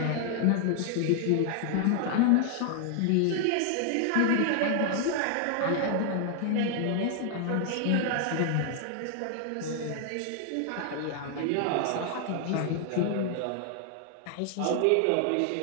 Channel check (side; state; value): both; different; correlation 0.00